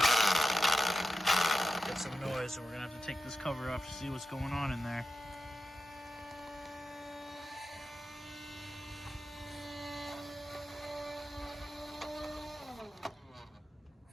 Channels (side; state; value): both; normal; correlation 0.90